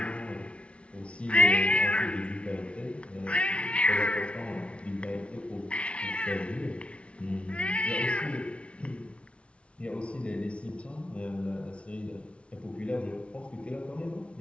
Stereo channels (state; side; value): late; right; 0.060 ms